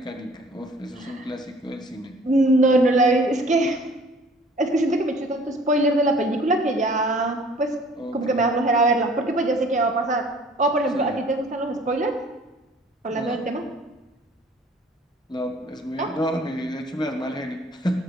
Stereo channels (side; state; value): both; normal; correlation 0.52